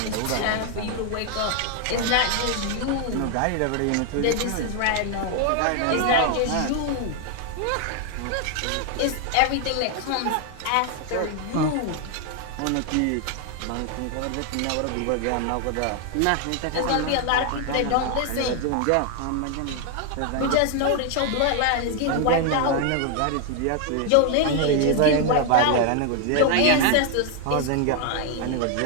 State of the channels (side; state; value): both; different; correlation 0.00